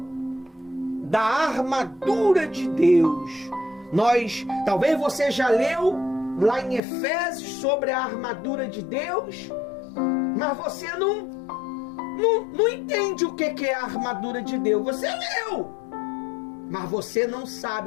da armadura de Deus. Talvez você já leu lá em Efésios sobre a armadura de Deus, mas você não entende o que é a armadura de Deus. Você leu, mas você não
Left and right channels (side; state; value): right; drops out; at 6.8 s